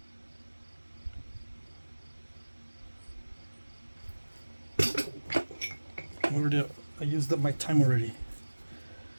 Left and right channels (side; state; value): both; inverted; correlation -1.00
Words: I used up my time already.